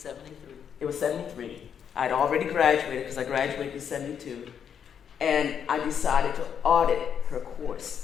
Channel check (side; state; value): right; quieter; 7.9 dB